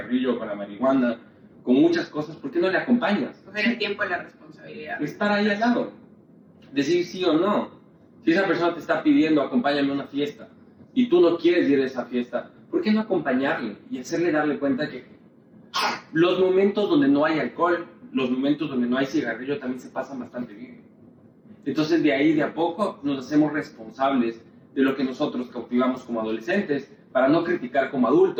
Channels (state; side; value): identical; both; correlation 1.00